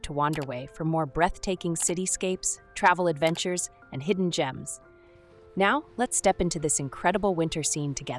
to Wanderway for more breathtaking cityscapes, travel adventures, and hidden gems. Now, let's step into this incredible winter scene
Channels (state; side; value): identical; both; correlation 1.00